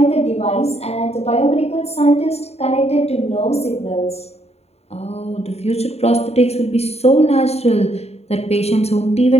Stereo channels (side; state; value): right; late; 0.30 ms